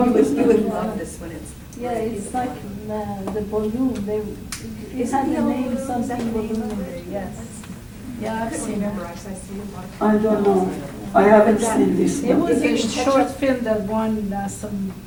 You would it? love this one. It's Yeah, it's like the balloon, it had the name, something balloon in there, yes. Yeah, I I've couldn't seen remember, it. I see a lot of. I don't know. I haven't seen this It one. was If you a can catch short up- film that won some,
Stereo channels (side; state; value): both; identical; correlation 1.00